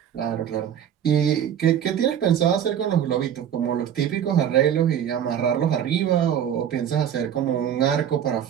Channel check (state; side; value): quieter; left; 9.4 dB